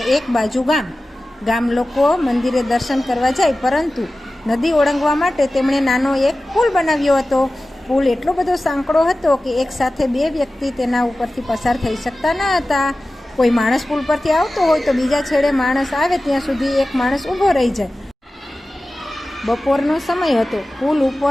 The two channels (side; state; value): both; normal; correlation 0.96